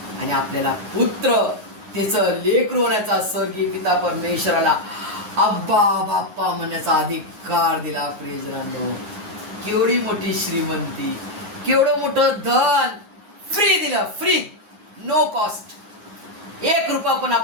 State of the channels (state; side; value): late; left; 9.6 ms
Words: आणि आपल्याला पुत्र, त्याचं लेकरू होण्याचा स्वर्गीय पिता परमेश्वराला अब्बा बाप्पा म्हणण्याचा अधिकार दिला. प्रियजनांनो, केवढी मोठी श्रीमंती, केवढं मोठं धन फ्री दिलं, फ्री, नो कॉस्ट. 1 रुपया पण